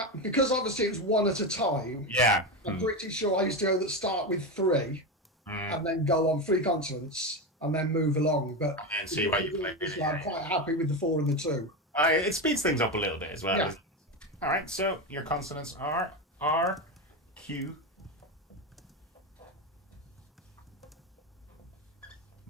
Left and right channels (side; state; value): both; normal; correlation 0.16